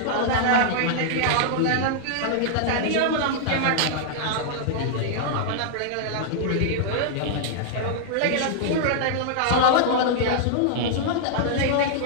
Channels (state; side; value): different; both; correlation -0.01